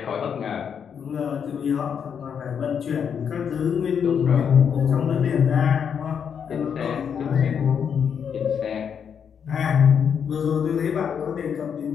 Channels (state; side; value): quieter; right; 7.4 dB